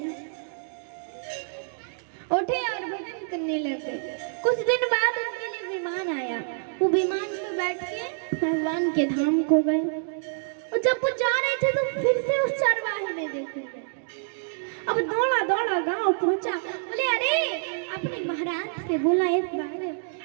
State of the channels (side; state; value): left; silent; digital silence